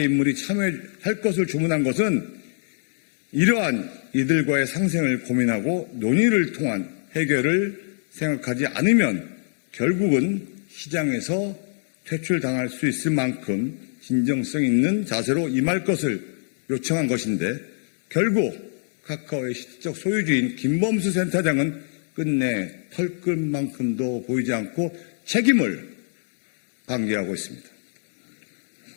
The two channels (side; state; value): right; silent; digital silence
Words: 인물이 참여할 것을 주문한 것은 이러한 이들과의 상생을 고민하고 논의를 통한 해결을 생각하지 않으면 결국은 시장에서 퇴출당할 수 있을 만큼 진정성 있는 자세로 임할 것을 요청한 것인데 결국 카카오의 실질적 소유주인 김범수 센터장은 끝내 털끝만큼도 보이지 않고 책임을 방기하고 있습니다.